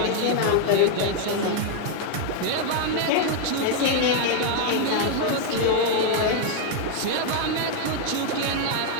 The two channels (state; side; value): different; both; correlation 0.00